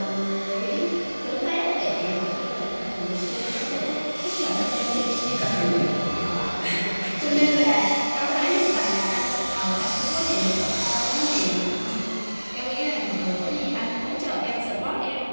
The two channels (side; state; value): both; inverted; correlation -1.00